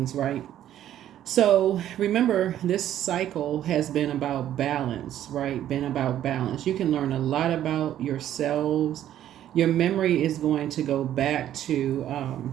right? So remember, this cycle has been about balance, right? Been about balance. You can learn a lot about yourselves. Your memory is going to go back to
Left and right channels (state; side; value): quieter; left; 11.6 dB